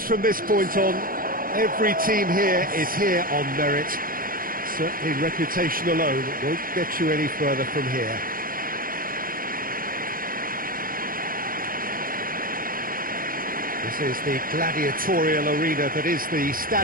from this point on. Every team here is here on merit. Certainly reputation alone won't get you any further from here. This is the gladiatorial arena that is the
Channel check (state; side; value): late; left; 0.41 ms